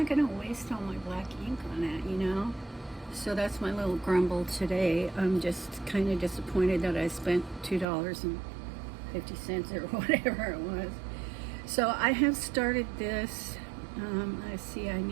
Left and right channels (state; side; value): drops out; left; at 7.9 s